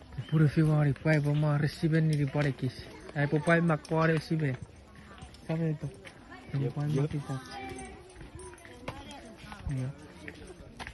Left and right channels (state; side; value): identical; both; correlation 1.00